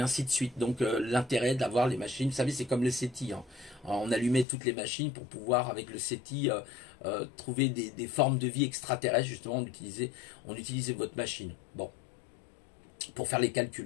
de suite. Donc, l'intérêt d'avoir les machines, vous savez, c'est comme le SETI. Hein. On allumait toutes les machines pour pouvoir, avec le SETI, trouver des formes de vie extraterrestres. Justement, on utilisait votre machine. Bon, pour faire les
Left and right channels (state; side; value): drops out; right; at 4.5 s